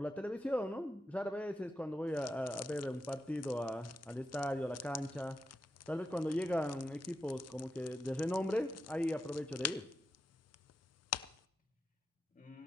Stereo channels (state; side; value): normal; both; correlation 0.87